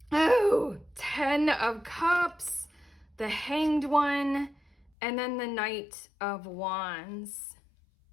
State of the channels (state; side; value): drops out; right; at 4.9 s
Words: Oh, 10 of Cups, the Hanged One, and then the Knight of Wands.